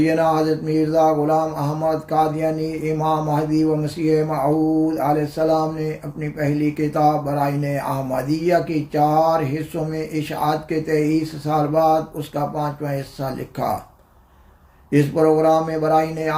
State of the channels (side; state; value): both; identical; correlation 1.00